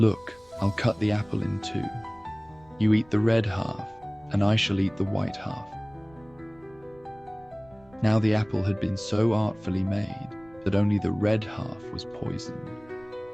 I'll cut the apple in 2. You eat the red half, and I shall eat the white half." Now the apple had been so artfully made that only the red half was poisoned.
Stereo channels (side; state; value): right; noise; rumble, 27 dB below the sound